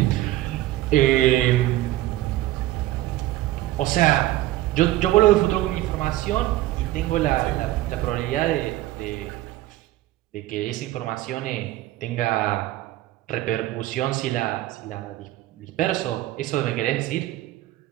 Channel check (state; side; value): quieter; left; 15.7 dB